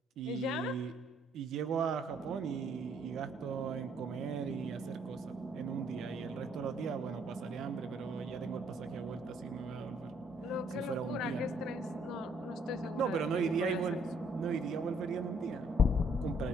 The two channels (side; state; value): both; normal; correlation 0.66